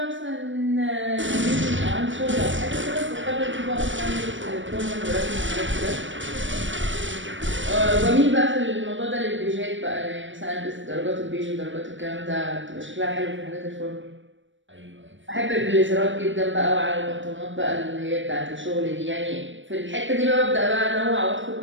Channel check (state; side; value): late; left; 0.56 ms